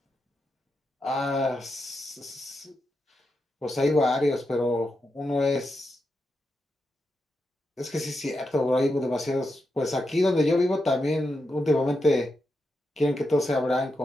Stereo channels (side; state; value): both; normal; correlation 0.86